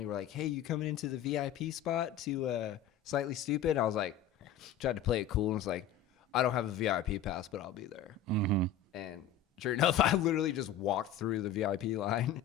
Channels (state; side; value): quieter; right; 8.0 dB